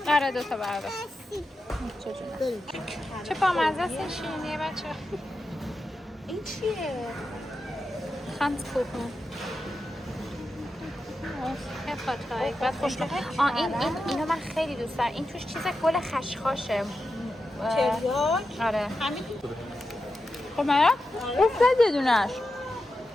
آره دوتا بردار بریم. چه بامزه است این شیرینیه بچه این چیه؟ خانسکوپن خیلی بعد خوشمزه اینو من خیلی دوست دارم این توش چیز گل خشخاشه تریاک آره همین خب مرا؟ افتاد یه دونش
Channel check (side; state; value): both; normal; correlation 0.90